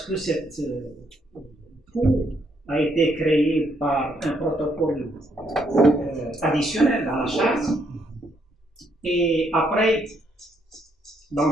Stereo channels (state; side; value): normal; both; correlation 0.73